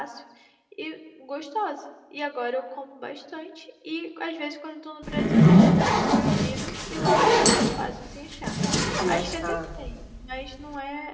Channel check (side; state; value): both; identical; correlation 1.00